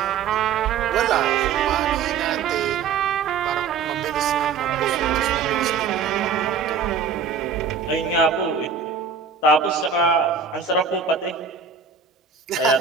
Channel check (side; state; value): left; quieter; 6.1 dB